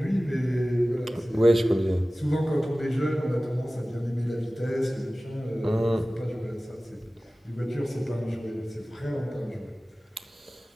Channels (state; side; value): normal; both; correlation 0.97